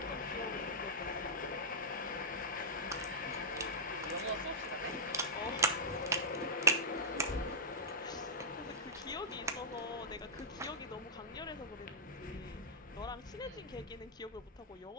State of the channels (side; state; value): both; normal; correlation -0.12